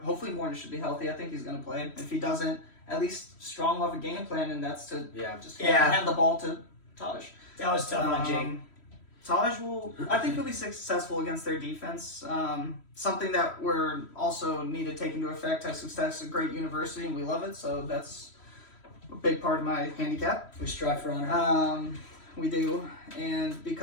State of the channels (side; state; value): right; late; 3.1 ms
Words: Warner should be healthy. I think he's going to play. If he doesn't, at least Strong will have a game plan, and that's to hand the ball to Taj. That was tough on Jake. Taj I think he'll be successful against their defense. Something that we're also need to take into effect. Texas Tech's a great university, and we love it, so that's a big part of my handicap. We strive for honor. We do, and